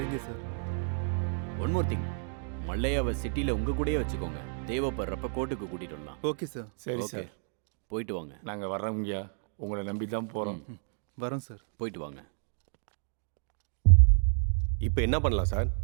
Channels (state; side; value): silent; left; 56 dB below the other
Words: சார். ஒன் மோர் திங், மல்லையாவை சிட்டியில் உங்கள் கூடயே வச்சுக்கோங்க. தேவைப்படுறப்ப கோர்ட்டுக்கு கூட்டிகிட்டு வரலாம். Okay sir. சரி ஓகே, சார். போயிட்டு வாங்க. நாங்கள் வர்றோங்கய்யா, உங்களை நம்பி தான் போகிறோம். வரோம் சார். போயிட்டு வாங்க. இப்போ என்ன பண்ணலாம் சார்?